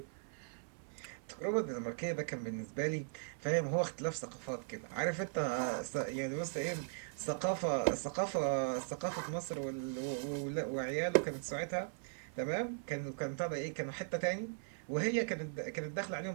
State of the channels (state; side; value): silent; left; 52 dB below the other